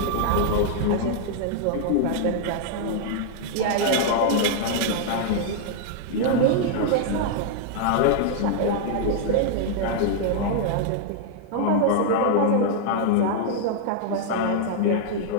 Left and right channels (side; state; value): both; different; correlation -0.01